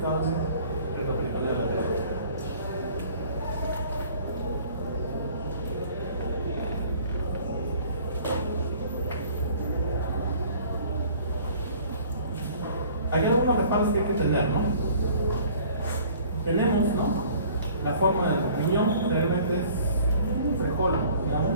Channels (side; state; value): both; inverted; correlation -0.51